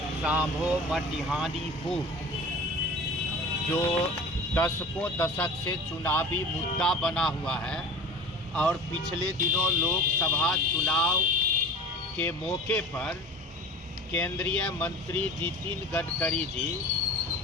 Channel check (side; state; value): both; normal; correlation 0.38